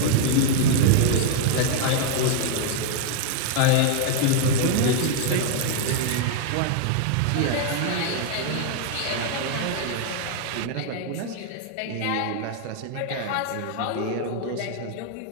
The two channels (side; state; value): both; different; correlation 0.00